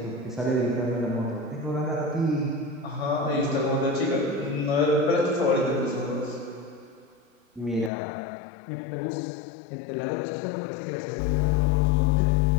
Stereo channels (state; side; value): drops out; right; at 7.9 s